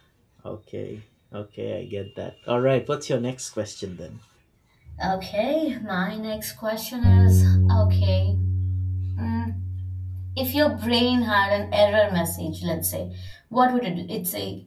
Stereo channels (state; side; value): identical; both; correlation 1.00